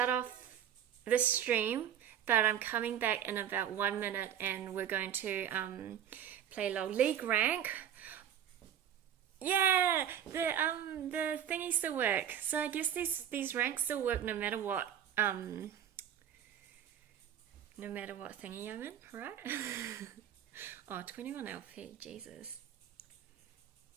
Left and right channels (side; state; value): left; quieter; 9.8 dB